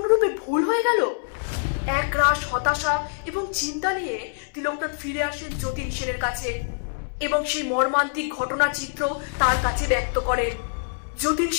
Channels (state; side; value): silent; right; 62 dB below the other